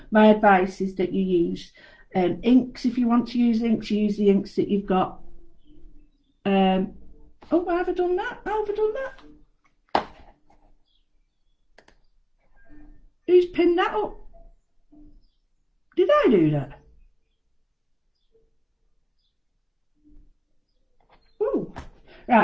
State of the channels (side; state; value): both; identical; correlation 1.00